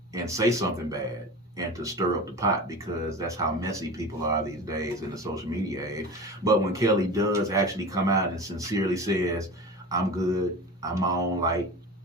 and say something bad and to stir up the pot, because that's how messy people are these days in the social media age. But when Kelly does actually come out and sincerely says, I'm good, I'm my own light,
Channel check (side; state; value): both; normal; correlation 0.32